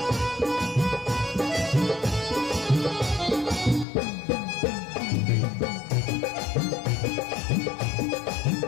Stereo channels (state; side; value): drops out; right; at 3.9 s